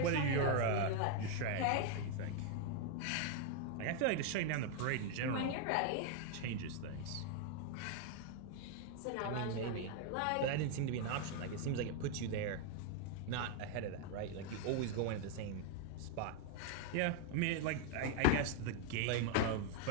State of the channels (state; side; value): different; both; correlation 0.01